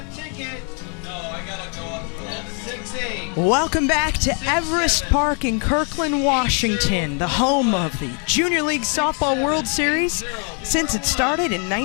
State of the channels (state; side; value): quieter; right; 39.9 dB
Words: ticket, no, I gotta go up for that. 6-8. Welcome back to Everest Park in Kirkland, Washington, the home of the Junior League Softball World Series. Since it started in